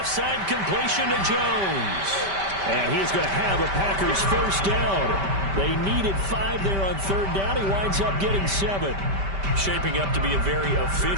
side completion to Jones. And he is going to have a Packers first down. They needed 5 there on 3rd down. He winds up getting 7. Shaping up to be a very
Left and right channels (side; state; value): left; late; 5.1 ms